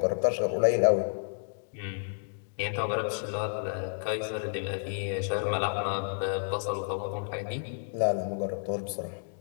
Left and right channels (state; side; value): silent; right; digital silence